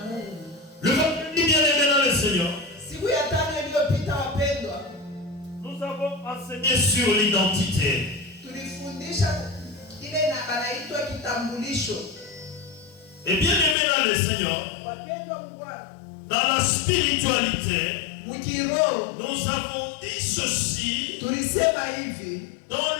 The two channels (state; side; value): drops out; right; at 13.8 s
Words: Mungu. Le vendredi bien-aimé dans le Seigneur, Siku ya tano iliyopita wapendwa, nous avons enseigné sur l'identité. tulifundisha ile na anaitwa kitambulisho. Et bien-aimé dans le Seigneur, Wapendwa mu Bwana, dans la spiritualité, mkiroho nous avons dit ceci tulisema hivi dans